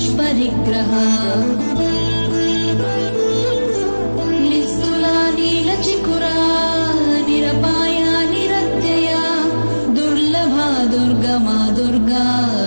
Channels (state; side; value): inverted; both; correlation -1.00